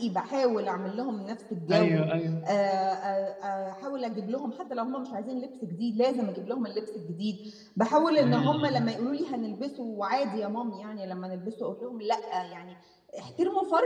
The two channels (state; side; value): identical; both; correlation 1.00